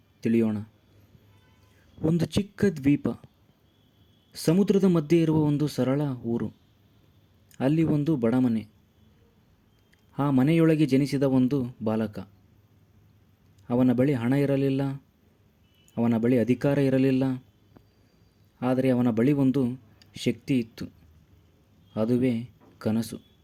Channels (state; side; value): identical; both; correlation 1.00